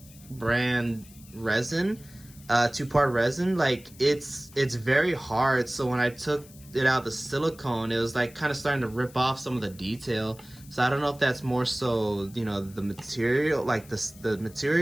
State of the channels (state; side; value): noise; left; hiss, 22 dB below the sound